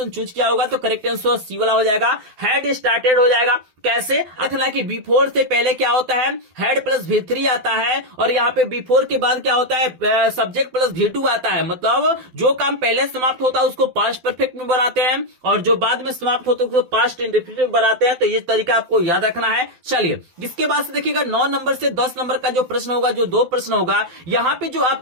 चूज किया होगा तो करेक्ट आंसर सी वाला हो जाएगा, हैड स्टार्टेड हो जाएगा। कैसे रखना कि बिफोर से पहले क्या होता है, हैड प्लस V3 आता है, और यहाँ पे बिफोर के बाद क्या होता है, सब्जेक्ट प्लस V2 आता है। मतलब जो काम पहले समाप्त होता है उसको पास्ट परफेक्ट में बनाते हैं, और जो बाद में समाप्त होता है उसको पास्ट इंडेफिनिट में बनाते हैं। तो ये तरीका आपको याद रखना है। चलिए इसके बाद से देखिएगा 9 नंबर से 10 नंबर का जो प्रश्न होगा, जो 2 प्रश्न होगा, यहाँ पे जो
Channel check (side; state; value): left; late; 12 ms